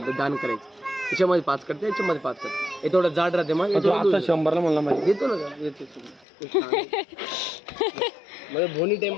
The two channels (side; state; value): right; drops out; at 6.2 s